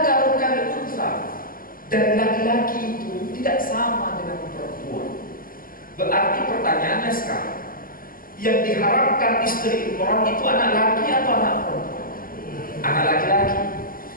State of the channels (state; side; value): late; right; 0.41 ms